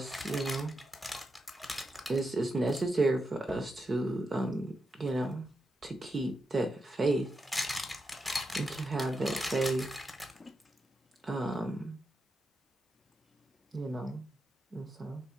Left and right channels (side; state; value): both; normal; correlation 0.86